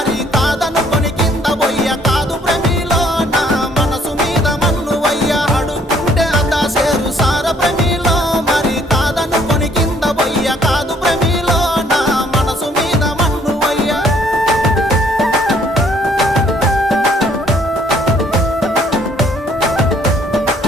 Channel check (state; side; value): normal; both; correlation 0.64